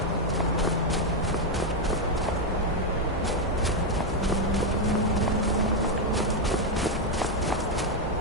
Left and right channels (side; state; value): both; normal; correlation 0.03